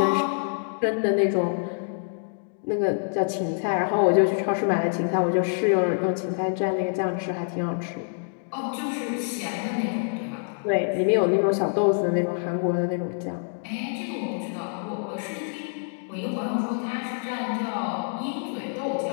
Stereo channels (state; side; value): silent; right; digital silence